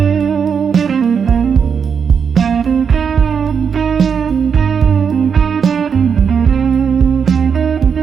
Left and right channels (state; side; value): quieter; left; 6.7 dB